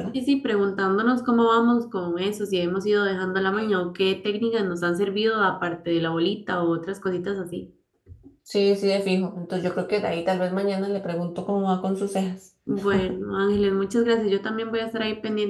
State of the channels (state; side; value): identical; both; correlation 1.00